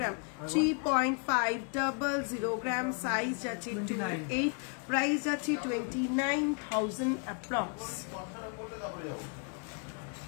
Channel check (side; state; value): right; quieter; 38.7 dB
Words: 3.500 গ্রাম, সাইজ আছে 2.8, প্রাইস আছে 29,000 অ্যাপ্রক্স।